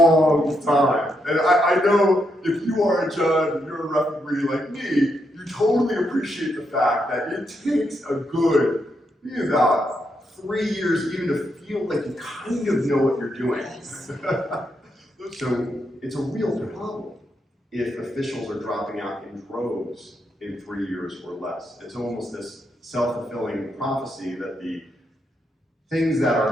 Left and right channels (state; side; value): normal; both; correlation 0.80